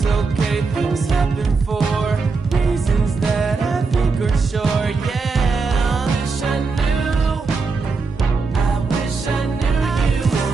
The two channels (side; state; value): left; quieter; 4.4 dB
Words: okay, things happen for reasons that I think are sure. Yeah, I wish I knew. I wish I knew you